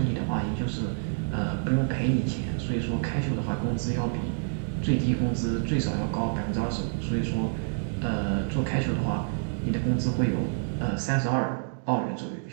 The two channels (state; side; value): silent; left; digital silence